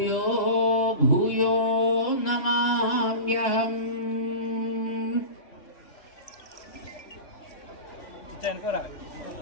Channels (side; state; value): right; late; 3.6 ms